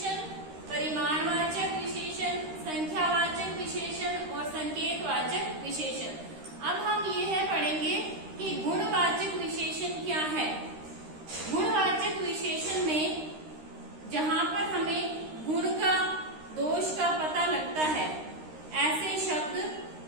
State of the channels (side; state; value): left; late; 13 ms